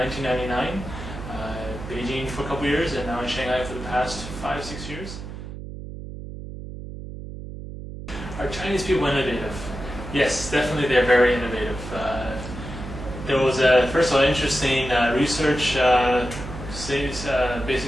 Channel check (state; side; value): noise; right; hum, 10 dB below the sound